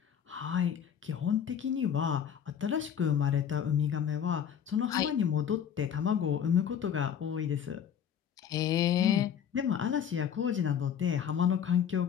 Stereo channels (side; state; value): right; quieter; 8.5 dB